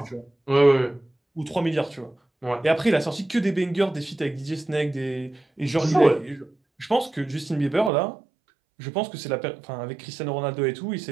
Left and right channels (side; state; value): left; drops out; at 7.9 s